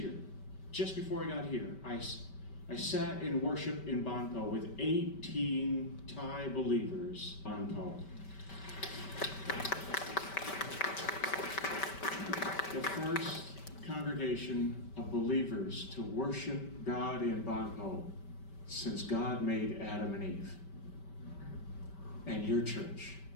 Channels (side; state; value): right; late; 5.2 ms